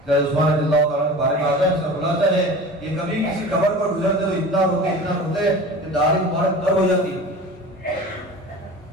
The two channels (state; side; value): normal; both; correlation 0.37